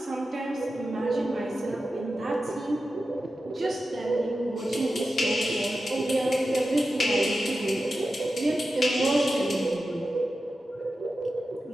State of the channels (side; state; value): both; normal; correlation 0.92